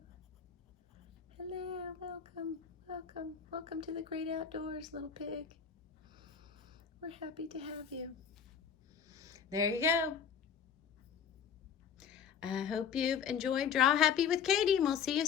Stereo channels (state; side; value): quieter; right; 7.3 dB